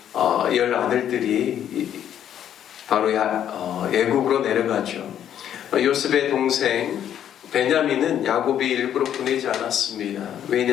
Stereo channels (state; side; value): quieter; right; 10.1 dB